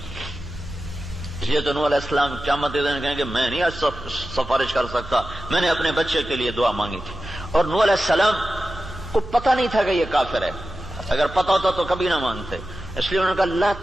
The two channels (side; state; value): right; noise; hum, 14 dB below the sound